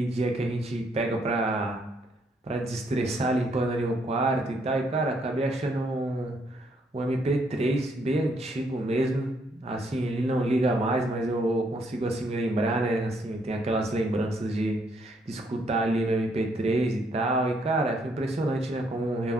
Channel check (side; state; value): both; normal; correlation 0.72